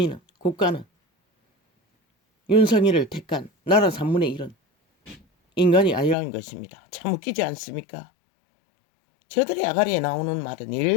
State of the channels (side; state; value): right; drops out; at 6.2 s